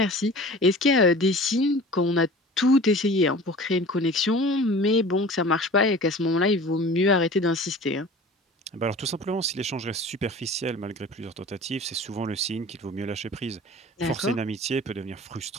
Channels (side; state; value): both; normal; correlation 0.41